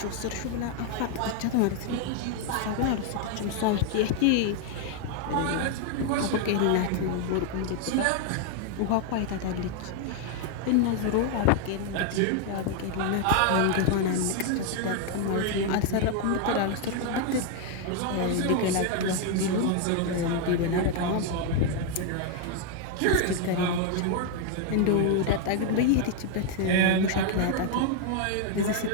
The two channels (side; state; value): both; different; correlation 0.01